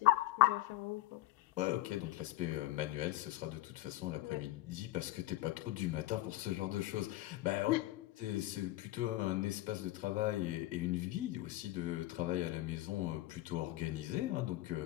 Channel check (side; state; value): right; quieter; 16.9 dB